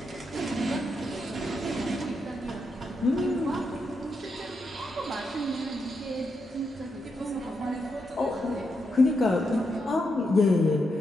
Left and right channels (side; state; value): both; normal; correlation 0.83